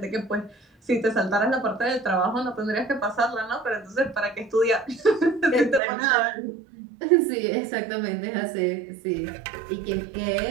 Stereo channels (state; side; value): drops out; left; at 5.8 s